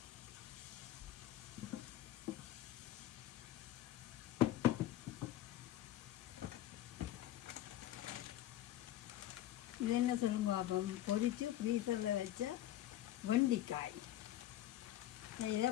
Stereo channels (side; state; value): right; quieter; 13.7 dB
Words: இது என்ன சொல்லுங்க பாப்போம். பொரித்து ஃப்ரீசரில் வச்ச வெண்டிக்காய் இதை